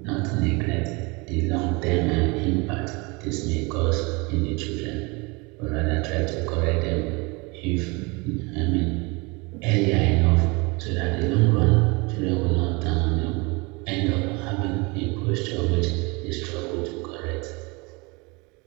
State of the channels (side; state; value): left; quieter; 27.5 dB